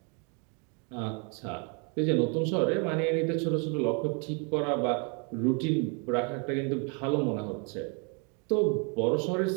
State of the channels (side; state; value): left; quieter; 36.0 dB